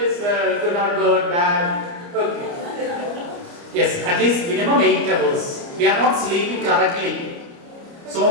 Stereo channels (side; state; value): left; late; 29 ms